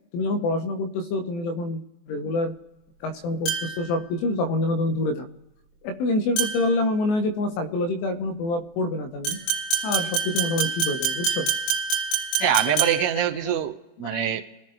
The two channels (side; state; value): right; late; 24 ms